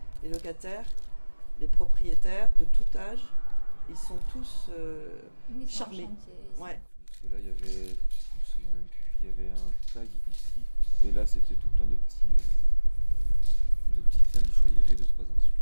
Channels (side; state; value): both; inverted; correlation -1.00